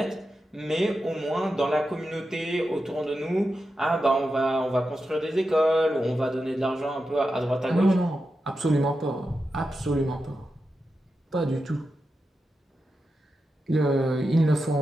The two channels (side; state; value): both; normal; correlation 0.89